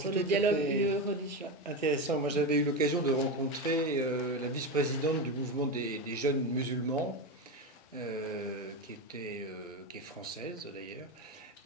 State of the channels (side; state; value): both; normal; correlation 0.16